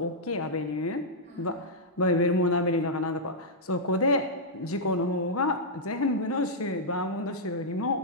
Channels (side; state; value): both; normal; correlation -0.09